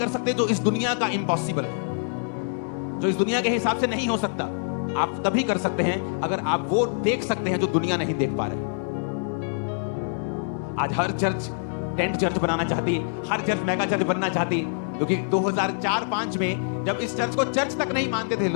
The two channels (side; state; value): right; silent; digital silence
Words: सकते जो इस दुनिया का इम्पॉसिबल है, जो इस दुनिया के हिसाब से नहीं हो सकता। आप तभी कर सकते हैं अगर आप वो देख सकते हैं जो दुनिया नहीं देख पा रहे। आज हर चर्च टेंट चर्च बनाना चाहती है, हर चर्च मेगा चर्च बनना चाहती है, क्योंकि 2004-5 में जब इस चर्च को चर्च तक नहीं मानते थे